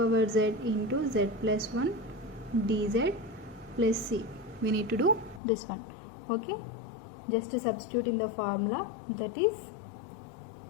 z into z plus 1 dz plus c, we need to do this one. Okay, just to substitute in the formula, that is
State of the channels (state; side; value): drops out; right; at 5.4 s